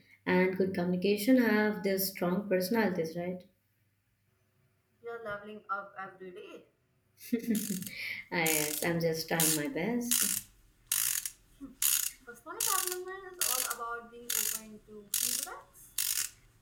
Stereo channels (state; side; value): identical; both; correlation 1.00